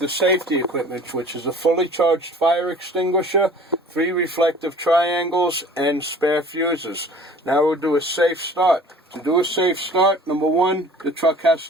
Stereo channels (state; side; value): normal; both; correlation 0.47